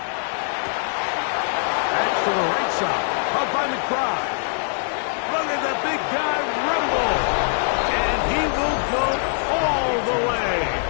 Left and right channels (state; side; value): silent; right; 64 dB below the other